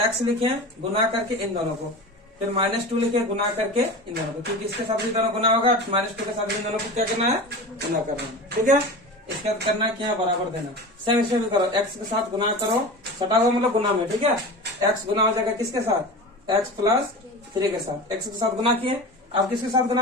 x लिखे गुना करके इन दोनों को, फिर -2 लिखे गुना करके इन दोनों को, क्योंकि इसके साथ इन दोनों गुना होगा, -2 के साथ इन दोनों को क्या करना है, गुना करना है, ठीक है। इसके बाद करना क्या, बराबर देना। सेम इसे भी करो, x के साथ गुना करो, सटा हुआ मतलब गुना में, ठीक है। x गुना हो जाएगा किसके साथ, x प्लस 3 के साथ, x के साथ गुना किए, अब किसके साथ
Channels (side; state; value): both; normal; correlation 0.31